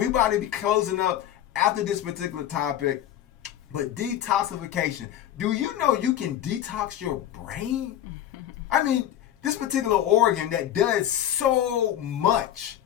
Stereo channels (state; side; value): quieter; right; 11.5 dB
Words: about to be closing up after this particular topic. But detoxification. Do you know you can detox your brain? I mean, this particular organ that does so much